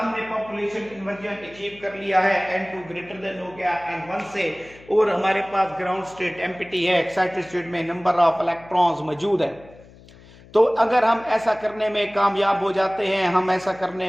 पॉपुलेशन इन्वर्जन अचीव कर लिया है, N2 ग्रेटर देन हो गया N1 से, और हमारे पास ग्राउंड स्टेट एम्प्टी है, एक्साइटेड स्टेट में नंबर ऑफ इलेक्ट्रॉन्स मौजूद है। तो अगर हम ऐसा करने में कामयाब हो जाते हैं, हम ऐसा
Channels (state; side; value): noise; left; hum, 23 dB below the sound